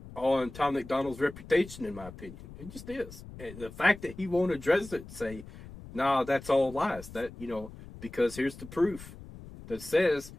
on Tom MacDonald's reputation, in my opinion. It just is. And the fact that he won't address it, say, nah, that's all lies. That, because here's the proof that says,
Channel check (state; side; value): noise; left; rumble, 15 dB below the sound